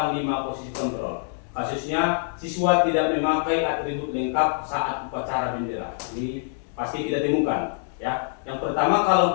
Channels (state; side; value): silent; right; digital silence